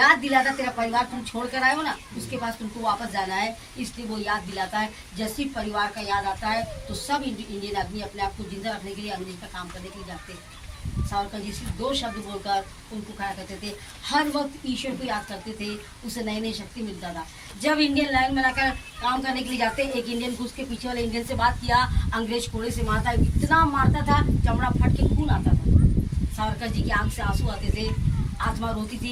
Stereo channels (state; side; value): identical; both; correlation 1.00